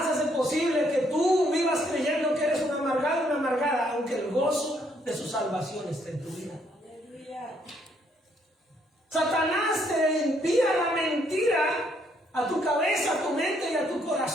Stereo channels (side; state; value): both; normal; correlation 0.70